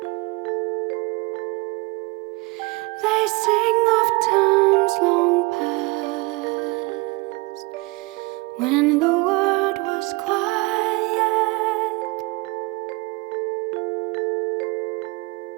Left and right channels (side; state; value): left; quieter; 24.3 dB